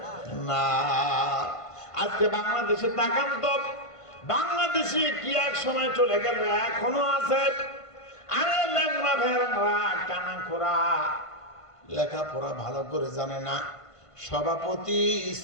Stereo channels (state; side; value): late; right; 1.5 ms